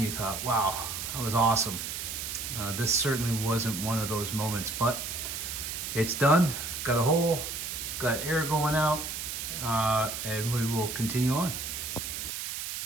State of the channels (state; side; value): noise; right; hiss, 5 dB below the sound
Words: you thought, wow, that was awesome. This certainly wasn't one of those moments, but it's done. Got a hole, got air going out, and we will continue on.